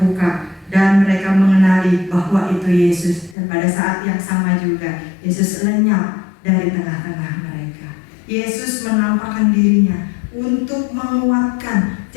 dan mereka mengenali bahwa itu Yesus. Dan pada saat yang sama juga Yesus lenyap dari tengah-tengah mereka. Yesus menampakkan dirinya untuk menguatkan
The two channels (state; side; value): drops out; right; at 3.4 s